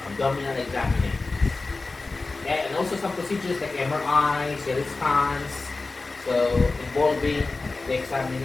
examination. Okay? And also some procedures like MRI, CT scans, so involving the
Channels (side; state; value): right; quieter; 3.6 dB